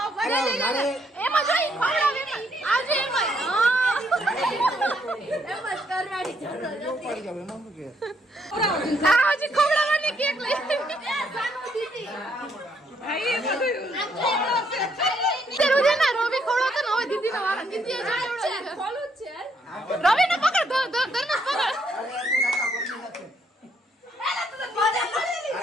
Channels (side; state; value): both; normal; correlation 0.72